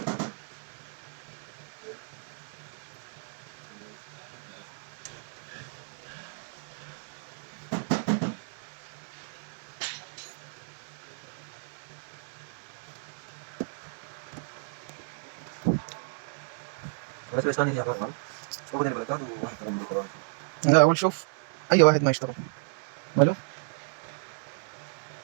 بس بس ثاني يا عمر هو بدل البلكات وواحد كمان بالقرآن. لا اول شوف اي واحد ما يشتغل ماله.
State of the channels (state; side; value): silent; left; digital silence